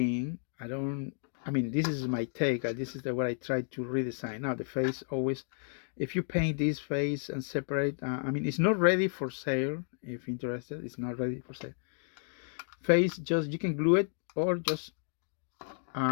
I mean, this is my take. This is what I tried to redesign. Now the face always, if you paint this face and separate, I mean, it's not ready for sale. If interested, it's not ready for sale. Face, just you can glue it or just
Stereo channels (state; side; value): silent; right; 56 dB below the other